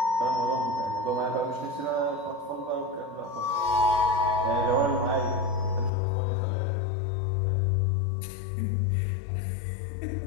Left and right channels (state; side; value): drops out; right; at 5.9 s